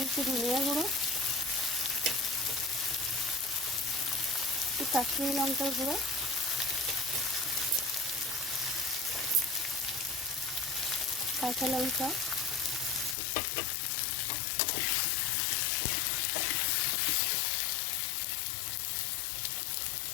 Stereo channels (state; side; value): drops out; right; at 13.2 s